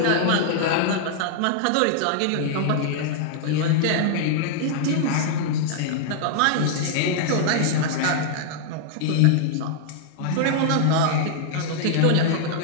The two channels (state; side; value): different; both; correlation -0.01